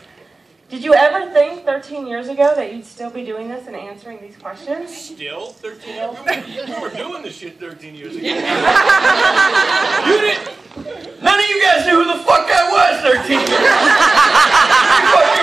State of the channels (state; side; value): quieter; left; 3.5 dB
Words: Did you ever think 13 years ago that you'd still be doing this and answering these questions? Still? 13 years ago? You were doing this shit 13 years ago. You didn't. None of you guys knew who the fuck I was 13 years ago.